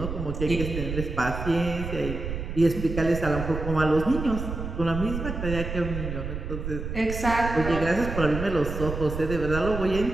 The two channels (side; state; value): right; noise; rumble, 6 dB below the sound